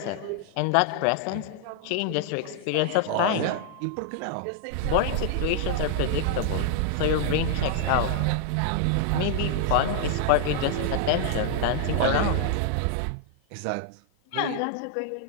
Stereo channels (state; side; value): different; both; correlation 0.00